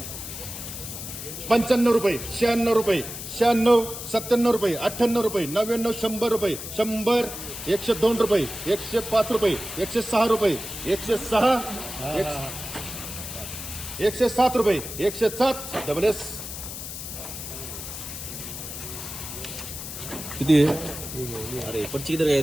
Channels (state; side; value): noise; left; hiss, 9 dB below the sound